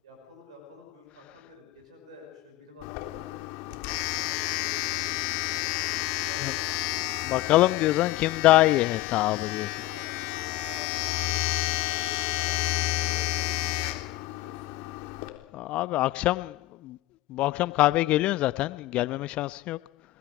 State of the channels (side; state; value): right; quieter; 16.8 dB